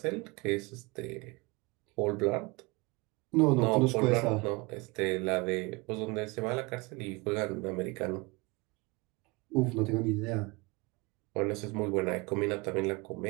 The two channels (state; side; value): quieter; left; 25.9 dB